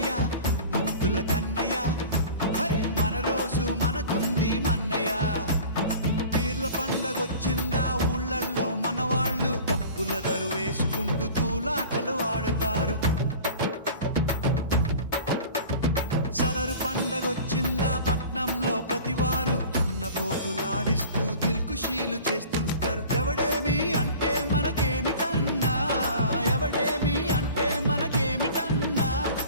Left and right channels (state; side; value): inverted; both; correlation -0.41